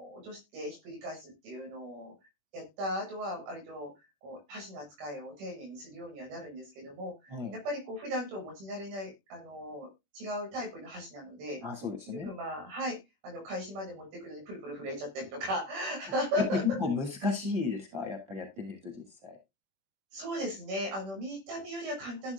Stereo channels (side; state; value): left; late; 21 ms